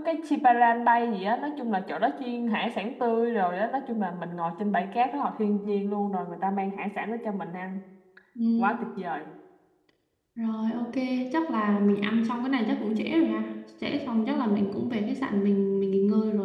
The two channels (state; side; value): identical; both; correlation 1.00